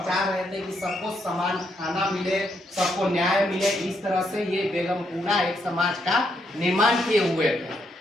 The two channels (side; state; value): both; normal; correlation 0.77